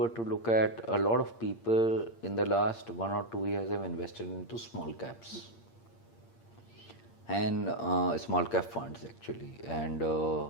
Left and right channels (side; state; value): right; late; 8.7 ms